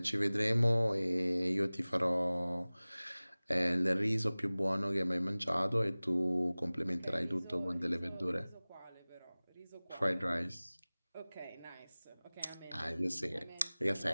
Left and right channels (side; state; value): both; inverted; correlation -0.99